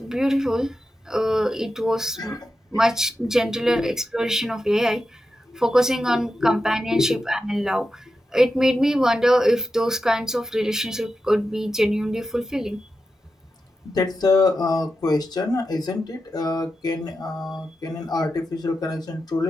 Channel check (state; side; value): normal; both; correlation 0.89